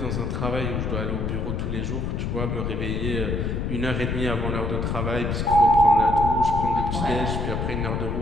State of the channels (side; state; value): left; noise; rumble, 1 dB below the sound